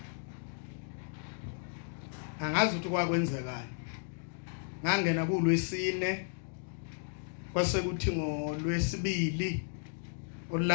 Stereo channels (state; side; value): silent; right; digital silence